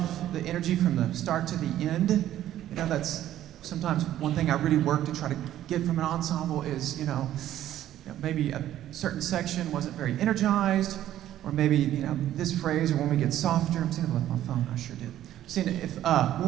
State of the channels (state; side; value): quieter; left; 12.5 dB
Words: the energy from the start to the end. You know, that's sometimes one thing I really work to try to get from an ensemble is, maybe a certain section wasn't very energized, or maybe, this phrase, or when we get softer. I'm seeing it with my phone, I sure did. Seeing if